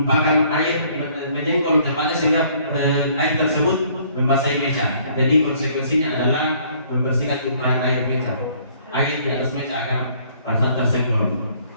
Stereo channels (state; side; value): inverted; both; correlation -0.61